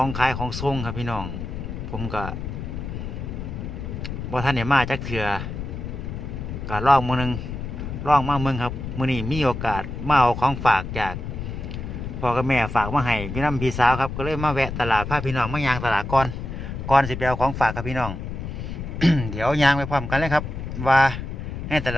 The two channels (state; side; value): noise; left; rumble, 6 dB below the sound